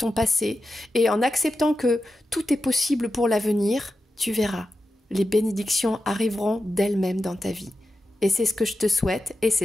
passé et en acceptant que tout est possible pour l'avenir, tu verras. Les bénédictions arriveront d'elles-mêmes dans ta vie. Et c'est ce que je te souhaite et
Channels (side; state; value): both; normal; correlation 0.91